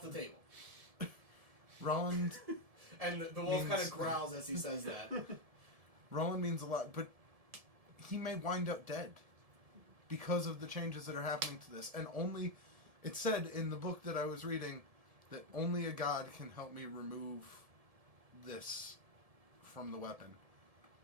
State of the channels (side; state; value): left; late; 1.7 ms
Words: the table. Roland And the wolf kind Means- of growls as he says that. Roland means a lot, but he may wind up dead because of the changes that are happening to this. And only, it said in the book that I was reading that only a god can help me remove this from the weapon.